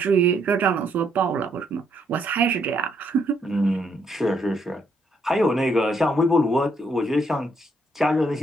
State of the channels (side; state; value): both; normal; correlation 0.73